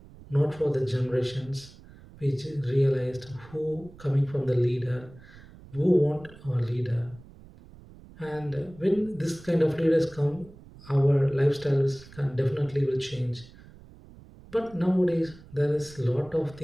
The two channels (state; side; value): noise; right; rumble, 21 dB below the sound